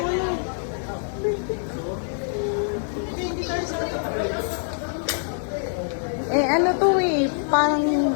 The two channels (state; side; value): silent; right; digital silence